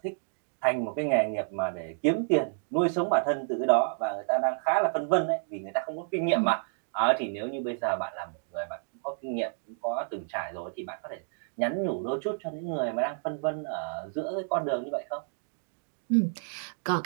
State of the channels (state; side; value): silent; left; digital silence